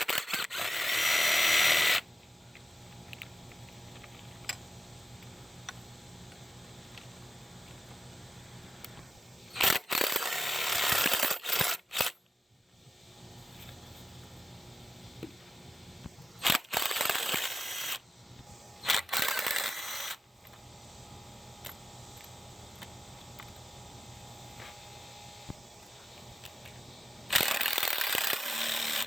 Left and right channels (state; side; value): normal; both; correlation 0.90